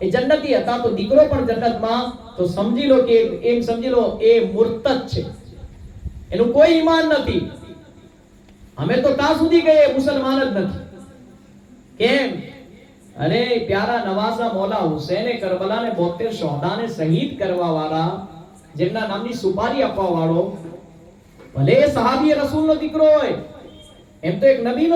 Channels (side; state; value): both; identical; correlation 1.00